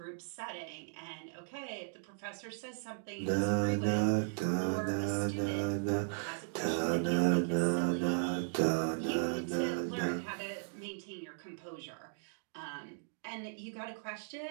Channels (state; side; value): silent; left; digital silence